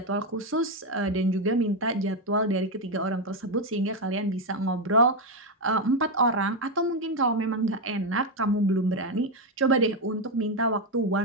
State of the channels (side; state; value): both; normal; correlation 0.06